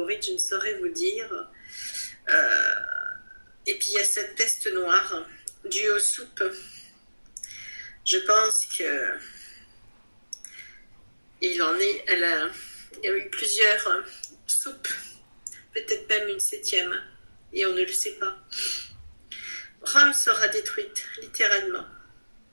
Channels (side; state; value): both; inverted; correlation -1.00